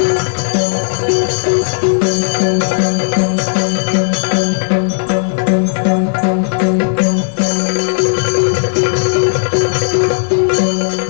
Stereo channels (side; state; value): right; silent; 70 dB below the other